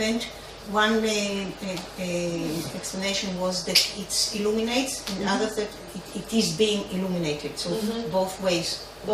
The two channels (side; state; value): both; identical; correlation 1.00